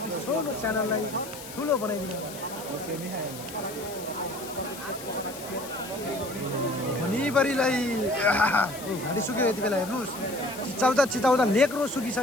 छोटो च्यानललाई ठुलो बनाइदिनु होला भनिबरीलाई घाँटी सुक्यो यति बेला हेर्नुहोस् चिचाउँदा लेक्रो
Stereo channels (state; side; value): noise; left; hiss, 13 dB below the sound